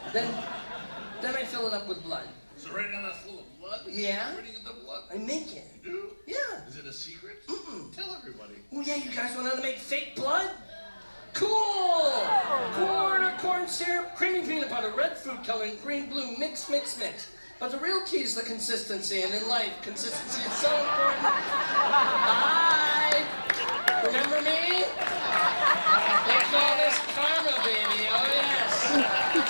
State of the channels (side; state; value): both; inverted; correlation -1.00